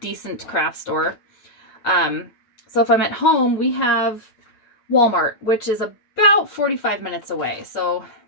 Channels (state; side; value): late; right; 9.1 ms